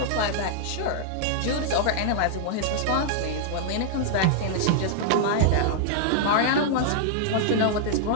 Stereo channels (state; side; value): different; both; correlation -0.01